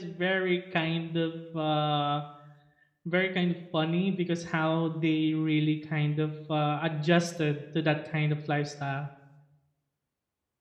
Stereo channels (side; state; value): both; identical; correlation 1.00